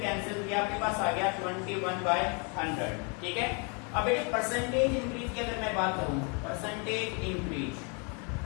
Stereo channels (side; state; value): right; quieter; 35.1 dB